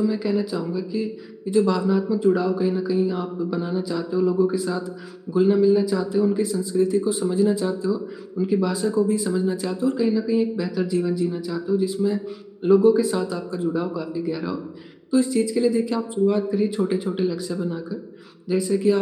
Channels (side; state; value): both; identical; correlation 1.00